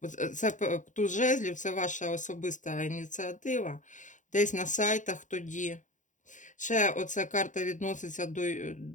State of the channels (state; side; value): late; right; 0.36 ms